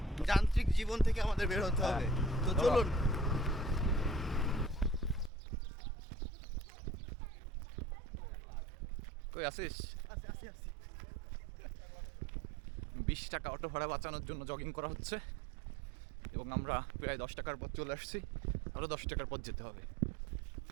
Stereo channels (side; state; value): left; drops out; at 5.3 s